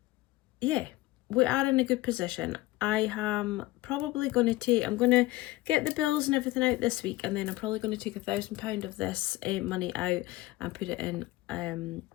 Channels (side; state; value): right; quieter; 18.6 dB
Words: yeah, we are in a good position. I am probably going to I'm going to get the bills and everything out this week, and then I'm probably going to take £1,000 of this money out and put it in a